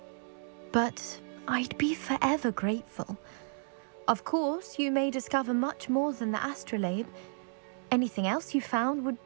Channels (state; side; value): silent; left; digital silence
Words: But I'd be forever grateful. Of course, you may discover much more than the astrolabe. Anything else you found would